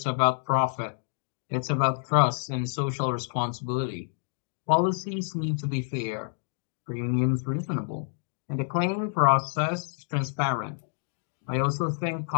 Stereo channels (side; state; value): right; silent; digital silence